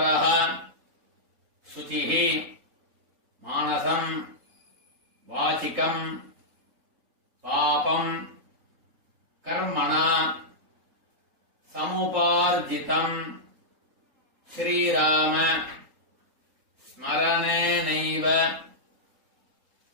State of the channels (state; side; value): late; left; 3.8 ms